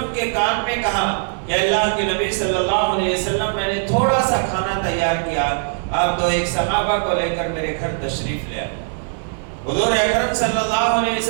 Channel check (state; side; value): silent; left; digital silence